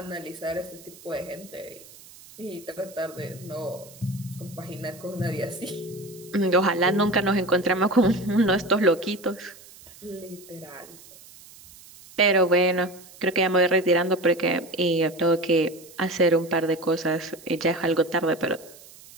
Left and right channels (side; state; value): right; noise; hiss, 21 dB below the sound